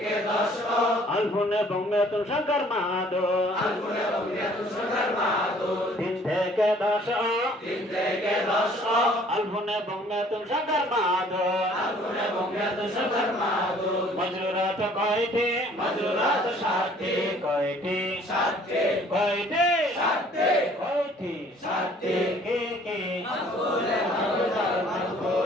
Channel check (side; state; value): both; normal; correlation 0.56